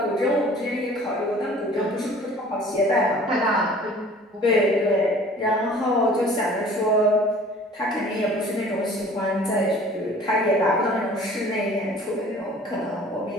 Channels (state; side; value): normal; both; correlation 0.48